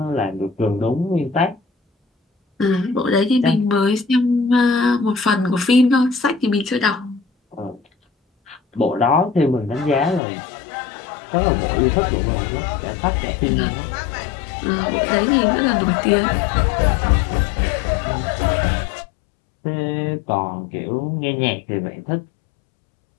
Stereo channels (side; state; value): right; drops out; at 10.2 s